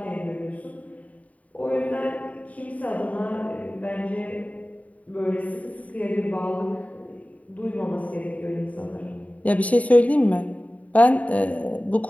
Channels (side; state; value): right; late; 0.069 ms